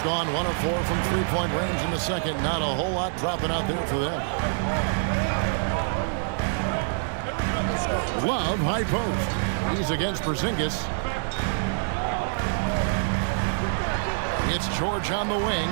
1 of 4 from three-point range in the second. Not a whole lot dropping out there for them. Love, high post. He's against Porzingis. It's George on the wing.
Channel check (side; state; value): left; silent; digital silence